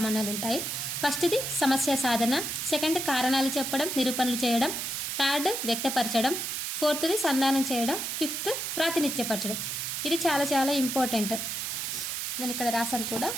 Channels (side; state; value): right; noise; hiss, 3 dB below the sound